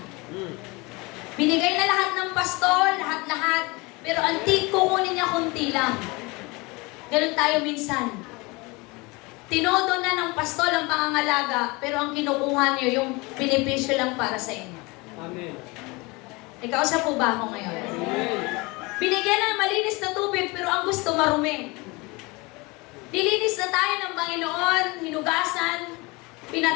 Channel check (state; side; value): quieter; right; 25.4 dB